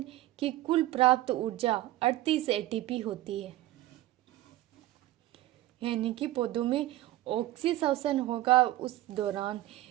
की कुल प्राप्त ऊर्जा 38 एटीपी होती है, यानी कि पौधों में ऑक्सीश्वसन होगा उस दौरान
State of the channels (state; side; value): quieter; left; 15.7 dB